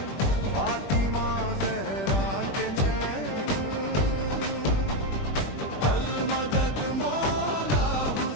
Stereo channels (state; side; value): late; right; 21 ms